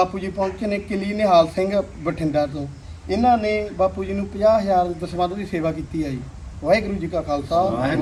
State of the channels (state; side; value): identical; both; correlation 1.00